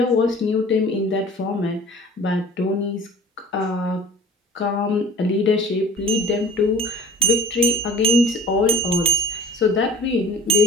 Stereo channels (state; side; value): normal; both; correlation 0.43